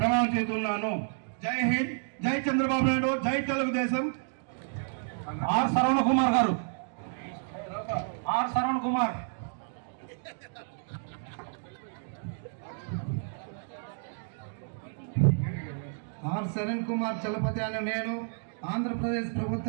చేస్తున్నాను. జై హింద్, జై చంద్రబాబు నాయుడు, జై తెలుగుదేశం. ఆర్ సరవణ కుమార్ గారు, ఆర్ శ్రవణ్ కుమార్. ఆర్ శరణ్ కుమార్ చలపతి అనే నేను ఆంధ్రప్రదేశ్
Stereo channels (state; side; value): silent; left; digital silence